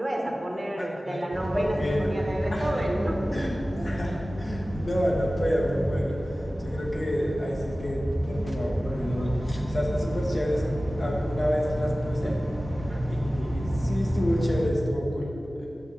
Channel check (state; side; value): normal; both; correlation 0.97